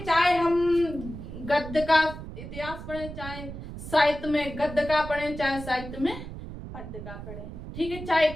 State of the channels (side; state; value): right; noise; rumble, 10 dB below the sound